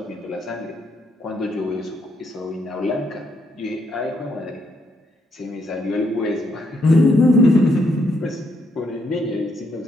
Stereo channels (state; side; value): normal; both; correlation 0.75